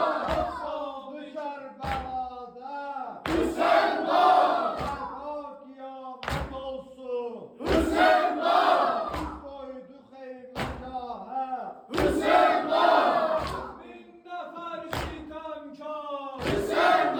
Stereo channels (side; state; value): both; identical; correlation 1.00